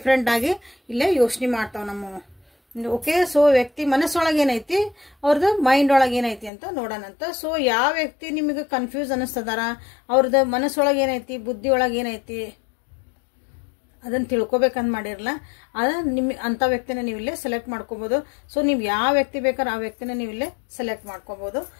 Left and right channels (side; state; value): right; drops out; at 6.5 s